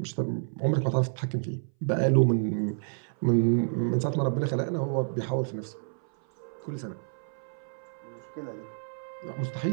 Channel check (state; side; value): silent; left; 58 dB below the other